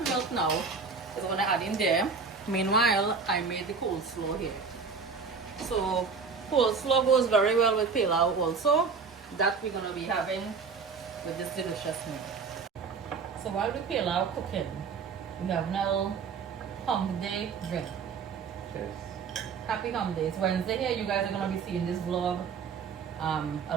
milk now is gonna add in there. Meanwhile, I made the coleslaw here. So coleslaw goes very well with pilau also. That we're gonna be having with this delicious meal. So while the pilau cooking, we have now Hump Day drink. Cheers. Happy Hump Day. It's Wednesday here. You guys are gonna be seeing this vlog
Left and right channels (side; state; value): left; quieter; 5.3 dB